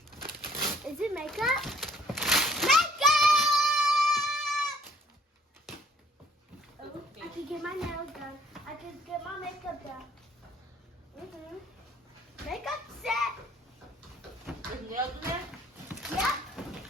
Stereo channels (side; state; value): both; normal; correlation 0.60